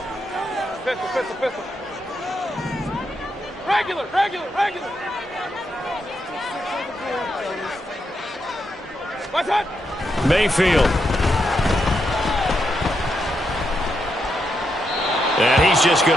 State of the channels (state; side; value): normal; both; correlation 0.82